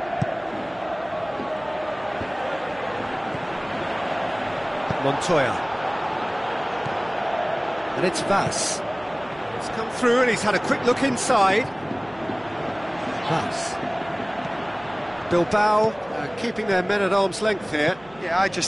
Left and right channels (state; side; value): noise; right; hum, 23 dB below the sound